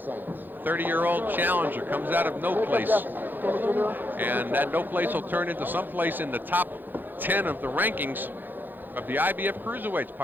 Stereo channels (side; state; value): left; late; 0.089 ms